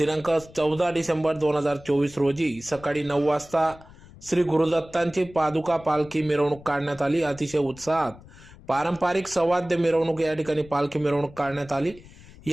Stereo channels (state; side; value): noise; left; rumble, 21 dB below the sound